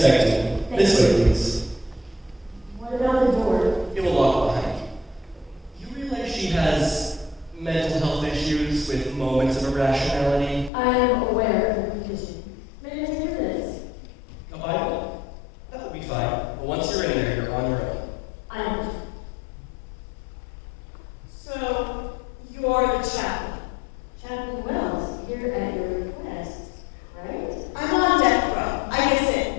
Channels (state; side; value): drops out; right; at 10.7 s